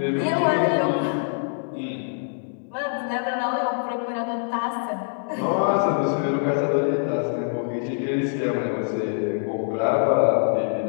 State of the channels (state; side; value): silent; right; digital silence